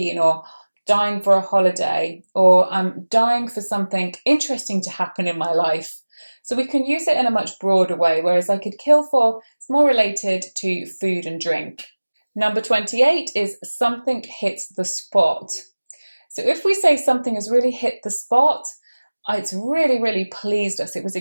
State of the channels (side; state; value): both; inverted; correlation -1.00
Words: or dying for a holiday, or I'm dying for something interesting to happen in my life. So we can use it in a much broader way, whereas I could kill for is more related to food and drink. Number 28 is something hits the spot. So if we say something has really hit the spot, it's really, really pleased us. It was